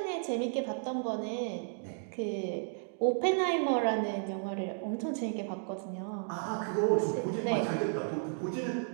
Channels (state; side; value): silent; left; 56 dB below the other